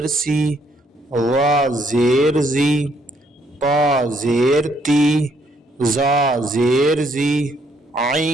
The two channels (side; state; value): both; normal; correlation 0.69